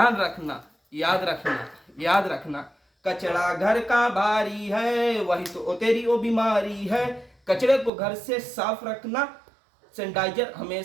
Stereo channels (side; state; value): left; drops out; at 7.9 s